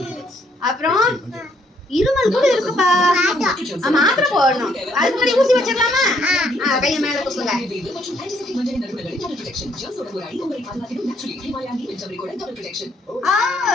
அப்புறம் இருமல் கூட இருக்குப்பா. மாத்திரை போடணும். அதுக்கு முன்னாடி ஊசி வச்சிடலாமா? கையை மேல தூக்குங்க.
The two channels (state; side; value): normal; both; correlation 0.69